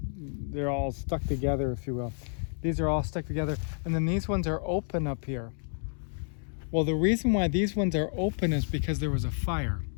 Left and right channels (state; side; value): silent; right; digital silence